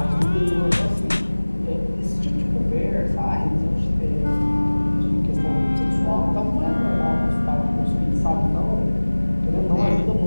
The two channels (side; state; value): both; inverted; correlation -1.00